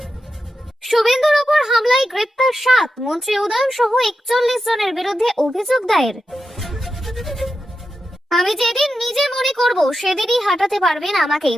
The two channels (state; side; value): normal; both; correlation 0.89